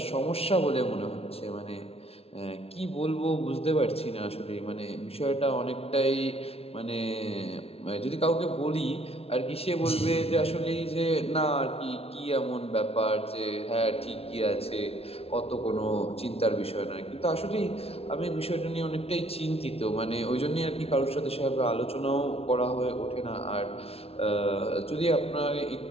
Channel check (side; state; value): right; late; 0.29 ms